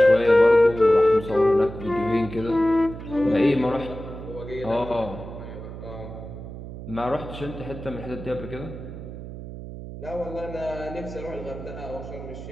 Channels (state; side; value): noise; right; hum, 11 dB below the sound